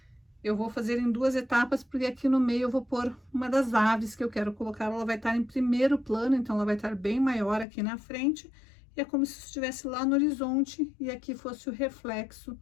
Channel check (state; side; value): drops out; right; at 7.7 s